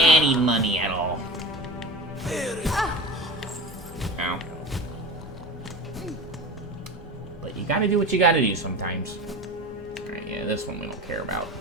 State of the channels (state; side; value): normal; both; correlation 0.29